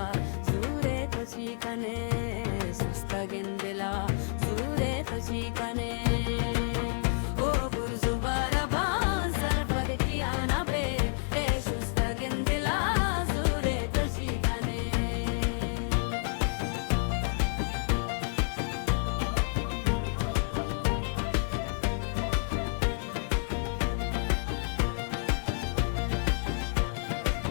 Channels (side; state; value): right; silent; 58 dB below the other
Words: zure toshikane sustagen dila zure toshikane o burzu baraban sarfad kiana be e sustagen dila zure toshikane